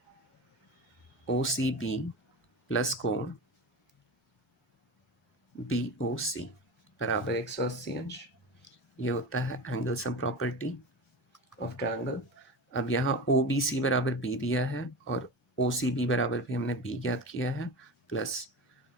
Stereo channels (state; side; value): normal; both; correlation 0.28